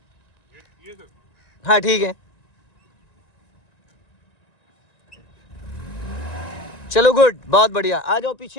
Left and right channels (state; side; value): late; right; 1.9 ms